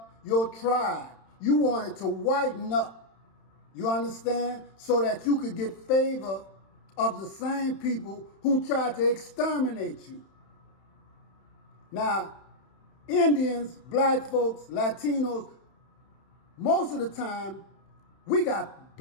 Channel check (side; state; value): right; late; 31 ms